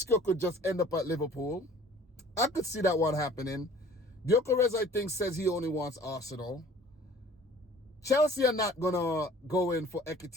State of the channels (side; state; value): both; normal; correlation 0.50